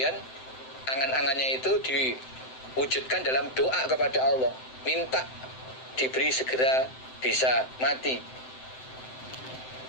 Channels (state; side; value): late; right; 7.8 ms